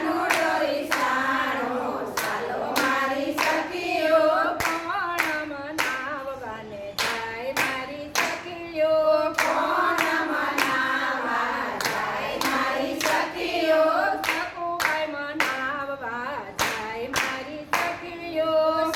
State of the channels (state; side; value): identical; both; correlation 1.00